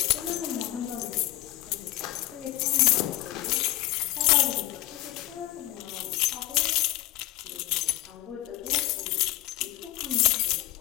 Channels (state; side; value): quieter; right; 16.2 dB